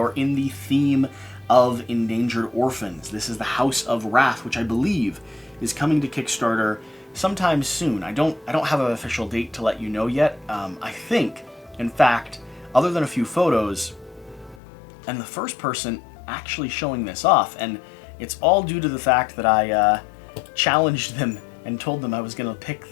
in the theme of, Endangered Orphans. This is the House of Rath, which I believe is coming to Kickstarter sometime soon. I don't have an official date to let you know yet. I think, in fact, other than a few photos, and the first person actually showing this off, and it's all due to the fact that I challenged them and told them I was gonna pick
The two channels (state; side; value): drops out; right; at 14.6 s